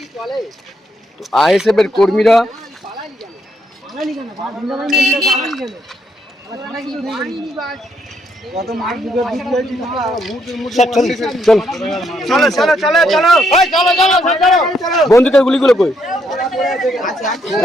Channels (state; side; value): normal; both; correlation 0.75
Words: আইএসএফ এর কর্মীরা বন্দুকের গুলিগুলো কই?